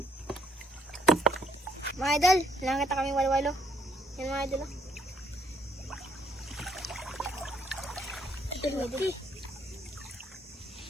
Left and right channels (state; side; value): normal; both; correlation 0.67